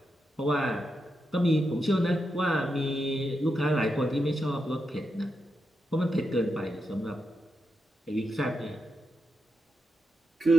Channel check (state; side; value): normal; both; correlation 0.86